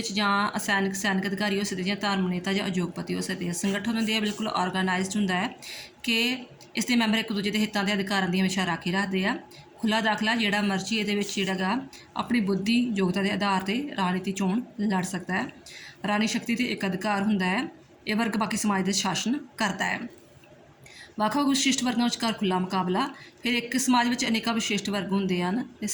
ਜਾਂ ਸੈਨਿਕ ਅਧਿਕਾਰੀ ਹੋ ਸਕਦੇ, ਜਾਂ ਧਾਰਮਿਕ ਨੇਤਾ ਜਾਂ ਉਦਯੋਗਪਤੀ ਹੋ ਸਕਦੇ। ਸੰਗਠਨ ਹੁੰਦੇ ਆ ਬਿਲਕੁਲ ਆਰਗੇਨਾਈਜ਼ਡ ਹੁੰਦਾ ਹੈ ਕਿ ਇਸ ਦੇ ਮੈਂਬਰ ਇੱਕ ਦੂਜੇ ਦੇ ਹਿੱਤਾਂ ਦੇ ਅਧਿਕਾਰਾਂ ਦੀ ਹਮੇਸ਼ਾ ਰਾਖੀ ਰੱਖਦੇ ਆ। ਖੁੱਲ੍ਹਾ ਦਾਖਲਾ ਜਿਹੜਾ ਮਰਜ਼ੀ ਇਹਦੇ ਵਿੱਚ ਜਿਹੜਾ ਗਾ ਆਪਣੀ ਬੁੱਧੀ ਯੋਗਤਾ ਦੇ ਆਧਾਰ 'ਤੇ ਰਾਜਨੀਤੀ ਚੋਣ ਲੜ ਸਕਦਾ ਹੈ। ਰਾਣੀ ਸ਼ਕਤੀ 'ਤੇ ਇੱਕ ਅਧਿਕਾਰ ਹੁੰਦਾ ਹੈ। ਇਹ ਵਰਗ ਬਾਕੀ ਸਮਾਜ ਦੇ ਸ਼ਾਸਨ ਕਰਦਾ ਹੈ। ਵੱਖ-ਵੱਖ ਵਿਸ਼ਿਸ਼ਟ ਵਰਗਾਂ ਵਿਚਕਾਰ ਖੁੱਲ੍ਹਾ ਮੁਕਾਬਲਾ। ਫਿਰ ਇੱਕ ਸਮਾਜ ਵਿੱਚ ਅਨੇਕਾਂ ਵਿਸ਼ਿਸ਼ਟ ਵਰਗ ਹੁੰਦੇ ਹਨ ਅਤੇ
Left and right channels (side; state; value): both; identical; correlation 1.00